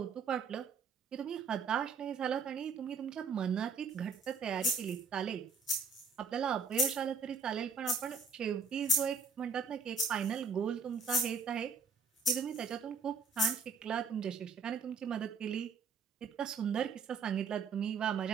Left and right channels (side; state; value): left; quieter; 4.8 dB